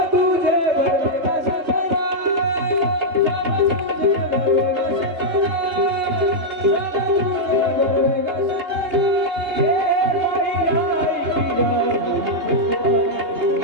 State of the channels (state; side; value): late; left; 3.3 ms